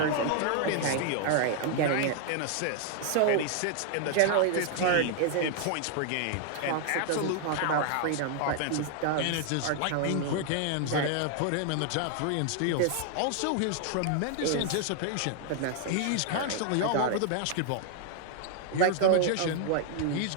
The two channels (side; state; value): both; different; correlation 0.00